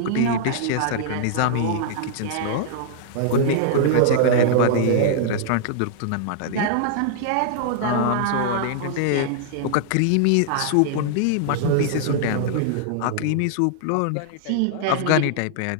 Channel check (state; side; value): different; both; correlation -0.01